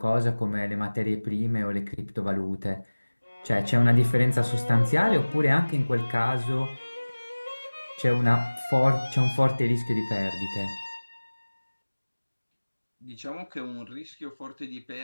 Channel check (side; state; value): both; inverted; correlation -1.00